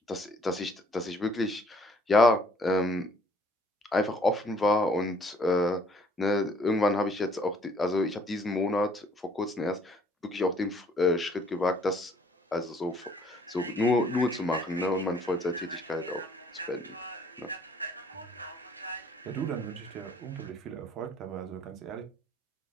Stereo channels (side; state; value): both; normal; correlation 0.60